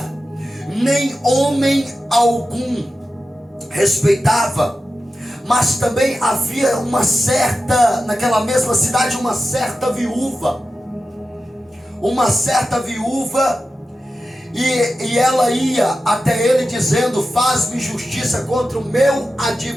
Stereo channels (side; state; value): both; normal; correlation 0.92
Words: nem homem algum respeitava. Mas também havia naquela mesma cidade, uma certa viúva. E ela ia até ele dizendo: faz-me justiça contra o meu